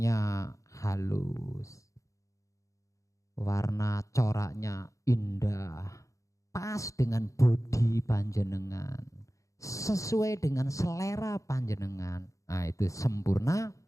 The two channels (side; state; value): right; late; 0.15 ms